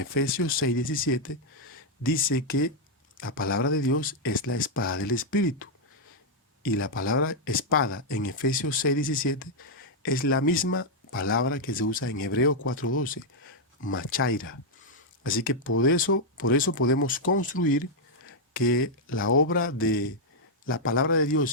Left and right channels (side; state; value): both; normal; correlation -0.03